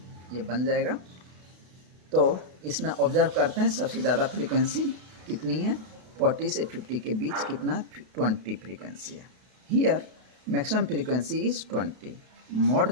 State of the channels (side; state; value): left; late; 32 ms